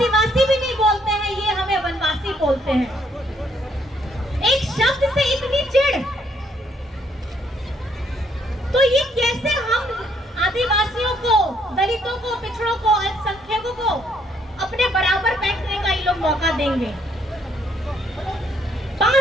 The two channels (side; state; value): both; normal; correlation 0.69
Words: भी नहीं बोलते हैं, ये हमें वनवासी बोलते हैं। एक शब्द से इतनी चिढ़, तो ये कैसे हम आदिवासियों को, दलितों को, पिछड़ों को, अल्पसंख्यकों को अपने बराबर बैठने का ये लोग मौका देंगे?